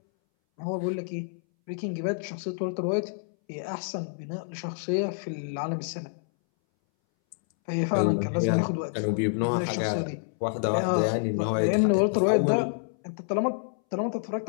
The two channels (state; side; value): silent; right; 60 dB below the other